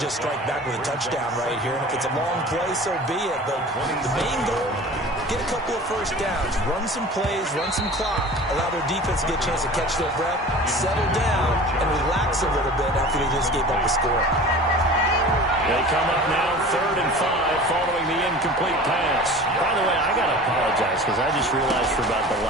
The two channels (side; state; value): both; normal; correlation 0.40